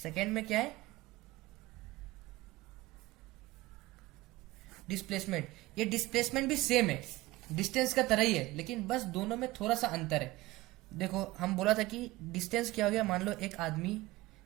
में क्या है, डिस्प्लेसमेंट. ये डिस्प्लेसमेंट भी सेम है, डिस्टेंस का तरह ही है, लेकिन बस दोनों में थोड़ा सा अंतर है. देखो हम बोला था कि डिस्टेंस क्या हो गया, मान लो एक आदमी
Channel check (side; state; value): left; quieter; 18.9 dB